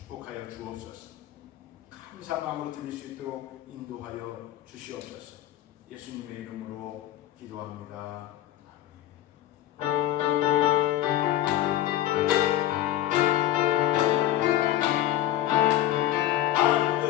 주옵소서. 감사한 마음으로 드릴 수 있도록 인도하여 주시옵소서. 예수님의 이름으로 기도합니다.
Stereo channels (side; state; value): right; quieter; 13.4 dB